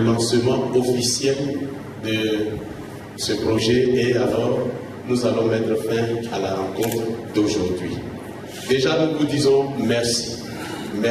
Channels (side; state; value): both; identical; correlation 1.00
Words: officiel de ce projet et alors nous allons mettre fin à la rencontre d'aujourd'hui. Déjà, nous vous disons merci.